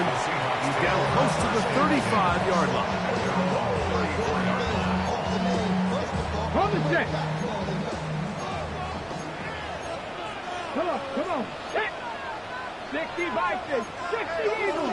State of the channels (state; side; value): identical; both; correlation 1.00